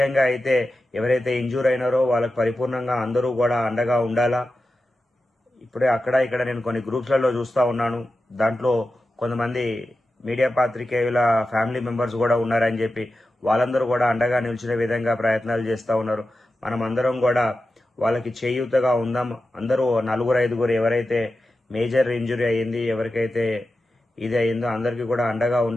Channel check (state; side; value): normal; both; correlation 0.92